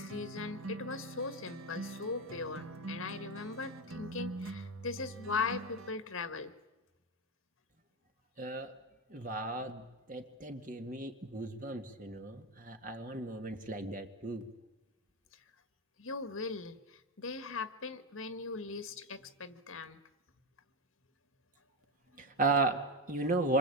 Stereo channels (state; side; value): normal; both; correlation 0.13